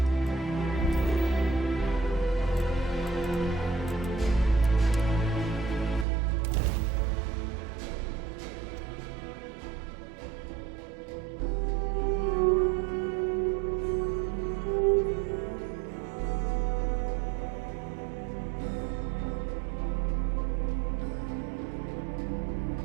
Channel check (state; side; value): drops out; left; at 6.1 s